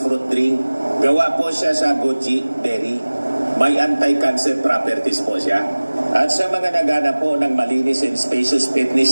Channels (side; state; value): both; inverted; correlation -1.00